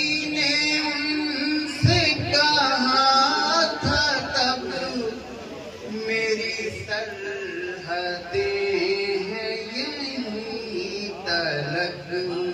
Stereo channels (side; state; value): both; identical; correlation 1.00